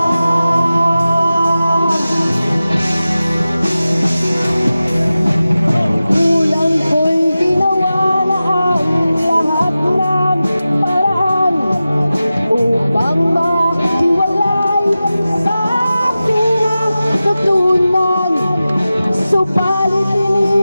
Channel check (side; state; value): both; inverted; correlation -0.95